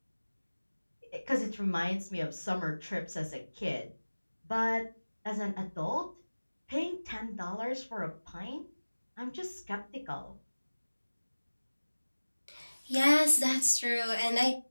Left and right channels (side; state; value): both; inverted; correlation -1.00